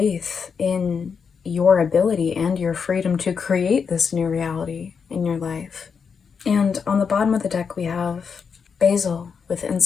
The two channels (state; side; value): quieter; right; 6.1 dB